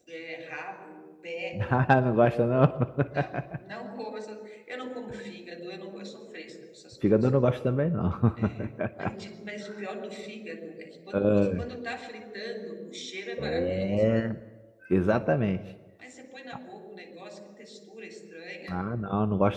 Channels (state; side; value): identical; both; correlation 1.00